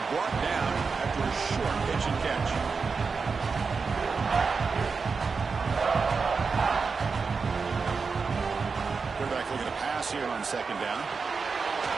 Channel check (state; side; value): quieter; left; 4.9 dB